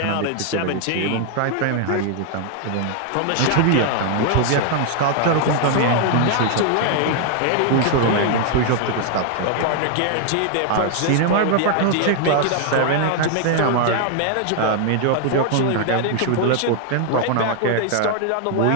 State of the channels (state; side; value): different; both; correlation 0.00